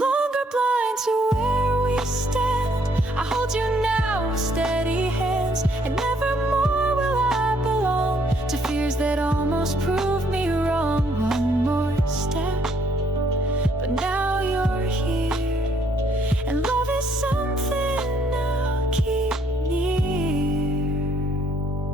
longer blind to where we stand, I hold you now with steady hands, and nevermore will I belong to fears that almost proved me wrong. One more step, but now you're here, and love is something I'll keep near.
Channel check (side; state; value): both; normal; correlation 0.68